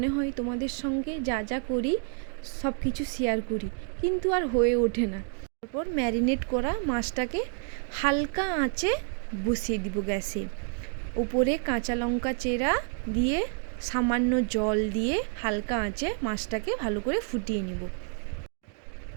হয় তোমাদের সঙ্গে যা যা করি সব কিছু শেয়ার করি, কিন্তু আর হয়ে ওঠে না। তারপর ম্যারিনেট করা মাছটাকে হালকা আঁচে বসিয়ে দিব গ্যাসে। উপরে কাঁচা লঙ্কা চেরা দিয়ে সামান্য জল দিয়ে হালকা আঁচে মাছটাকে ভালো করে ফুটিয়ে নেব।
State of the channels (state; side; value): quieter; left; 39.4 dB